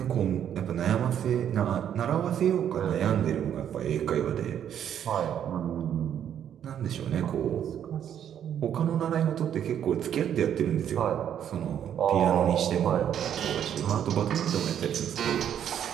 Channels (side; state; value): left; quieter; 9.6 dB